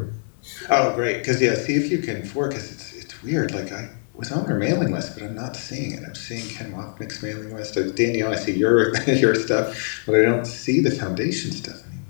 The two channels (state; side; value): silent; right; 63 dB below the other